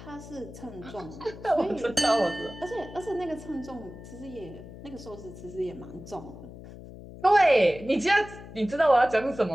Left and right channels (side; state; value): left; noise; hum, 15 dB below the sound